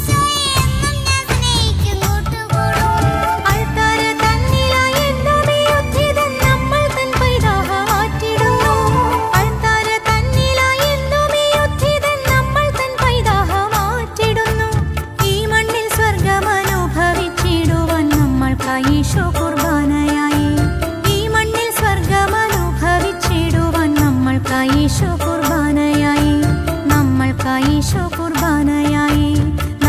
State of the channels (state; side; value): identical; both; correlation 1.00